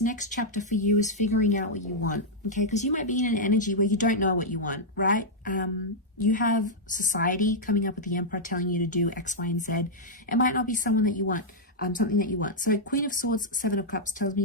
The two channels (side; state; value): both; normal; correlation -0.06